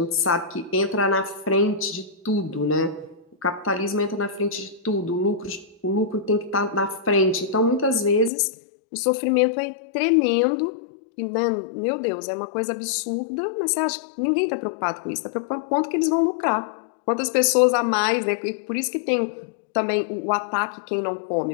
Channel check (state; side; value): drops out; right; at 8.3 s